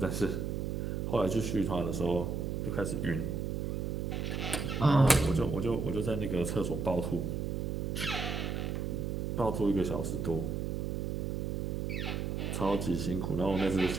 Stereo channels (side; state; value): right; noise; hum, 1 dB below the sound